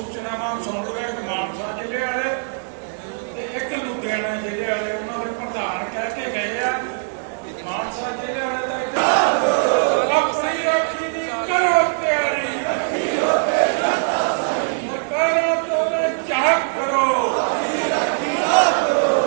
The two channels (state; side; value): silent; left; digital silence